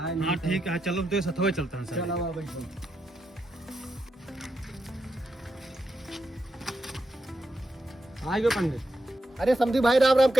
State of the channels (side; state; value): both; normal; correlation 0.85